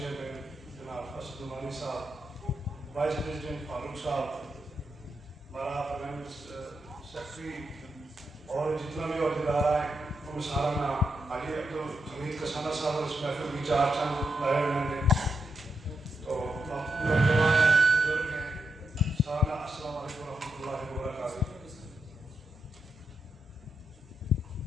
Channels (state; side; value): normal; both; correlation 0.84